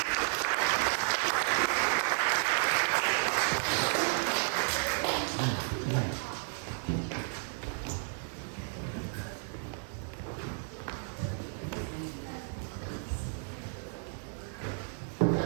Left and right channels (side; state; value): left; silent; 56 dB below the other